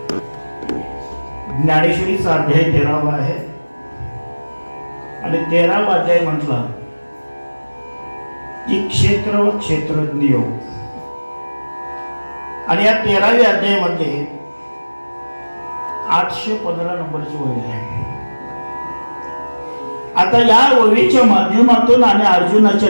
ज्ञानेश्वरीचा अध्याय 13वा आहे आणि 13वा अध्याय म्हटला की क्षेत्र व क्षेत्रज्ञ योग. आणि या 13व्या अध्यायामध्ये 815 नंबरची ओवी आहे. आता या ओवीच्या माध्यमातून आणि अर्जुनाच्या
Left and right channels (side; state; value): both; inverted; correlation -1.00